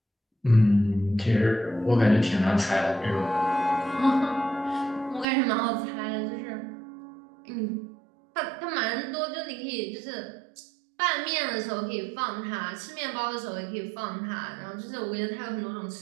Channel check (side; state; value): left; drops out; at 5.2 s